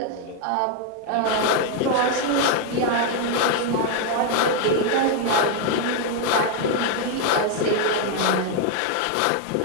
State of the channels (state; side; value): different; both; correlation 0.01